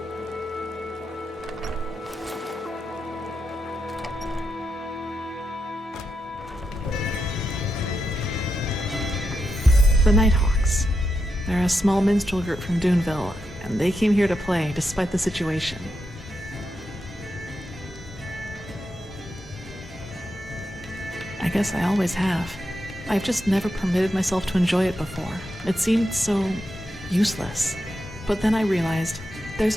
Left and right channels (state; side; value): normal; both; correlation 0.86